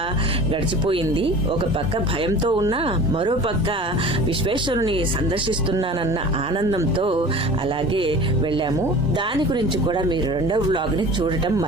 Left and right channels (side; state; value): both; normal; correlation 0.40